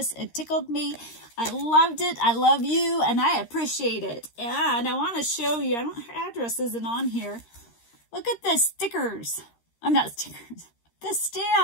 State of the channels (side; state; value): right; late; 13 ms